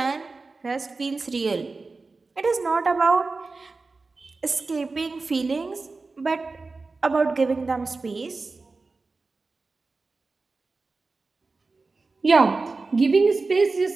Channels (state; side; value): quieter; left; 3.8 dB